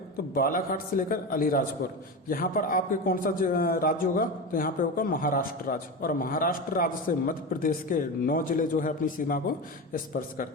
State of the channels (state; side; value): normal; both; correlation 0.22